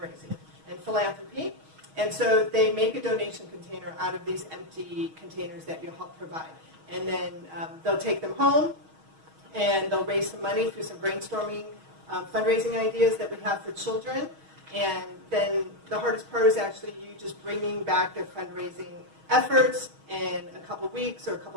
and philanthropy. And so they make a donation container out of these empty containers that you help provide. And then they'll take them home, and they'll raise some money through some brainstorming fundraising ideas that we have for children. And then the hardest part is actually you just bringing back their fundraising efforts in a couple weeks or a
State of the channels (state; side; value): late; left; 6.3 ms